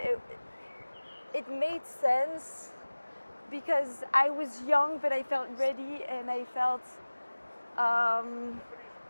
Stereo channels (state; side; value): inverted; both; correlation -1.00